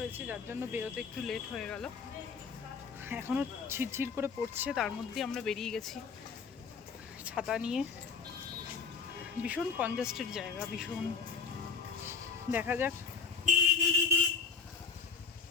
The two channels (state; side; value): quieter; right; 5.5 dB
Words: যার জন্য বেরোতে একটু লেট হয়ে গেল। এখনও ঝিরঝির করে পড়ছে, তার মধ্যেই আমরা বেরিয়ে গেছি ছাতা নিয়ে। ভীষণ কনজাস্টেড জায়গা, ভীষণ। দেখা যাক।